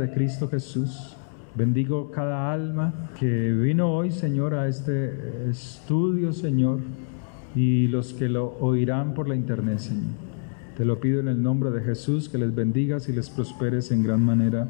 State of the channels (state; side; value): silent; right; 62 dB below the other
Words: Cristo Jesús. Bendigo cada alma que vino hoy, Señor, a este estudio, Señor, y los que lo oirán por la internet, Señor. Te lo pido en el nombre de Jesús, que les bendigas y les prosperes en gran